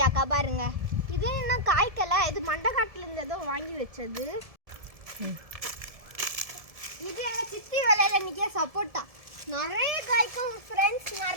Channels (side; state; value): left; late; 1.7 ms